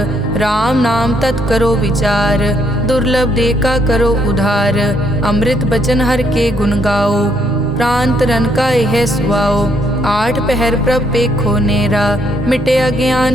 राम नाम तत् करो विचार, दुर्लभ देखा करो उधार। अमृत बचन हर के गुण गाओ, प्राण तरन का यह सुआओ। आठ पहर प्रभ पेखो नेरा, मिटे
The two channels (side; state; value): both; normal; correlation 0.71